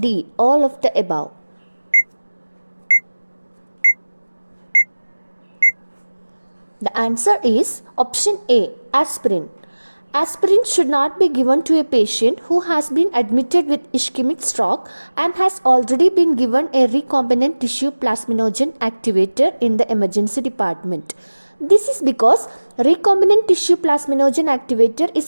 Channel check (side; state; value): both; inverted; correlation -1.00